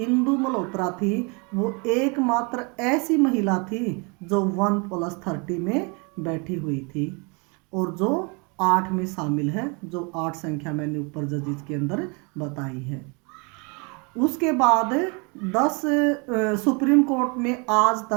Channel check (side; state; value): left; quieter; 31.8 dB